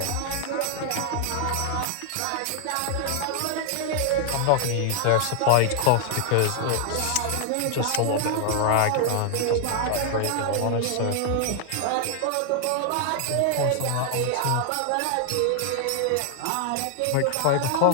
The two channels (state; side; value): different; both; correlation 0.00